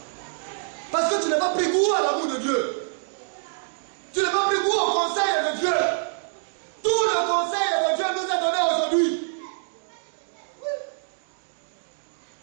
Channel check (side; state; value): left; silent; digital silence